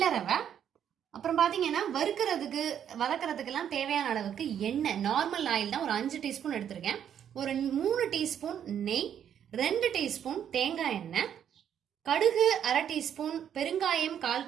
ரவை. அப்புறம் பாத்தீங்கன்னா வறுக்கிறதுக்கு வதக்கிறதுக்கெல்லாம் தேவையான அளவுக்கு எண்ணெய், நார்மல் ஆயில் தான் ஒரு 5 டீஸ்பூன் எடுத்திருக்கேன். ஒரு 3 டீஸ்பூன் நெய், 2 டீஸ்பூன் தேங்காய் எண்ணெய், கடுகு 1/2 டீஸ்பூன், பெருங்காயம் 1/4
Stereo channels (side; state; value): left; quieter; 9.2 dB